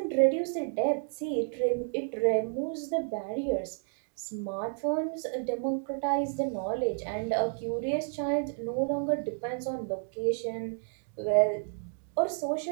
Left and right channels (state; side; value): silent; left; digital silence